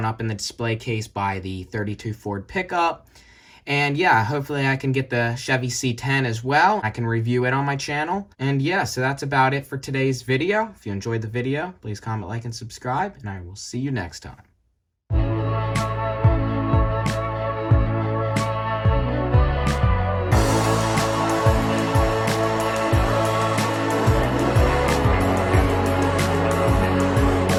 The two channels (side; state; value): both; identical; correlation 1.00